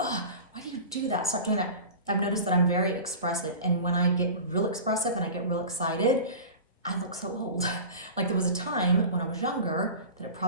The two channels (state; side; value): inverted; both; correlation -0.34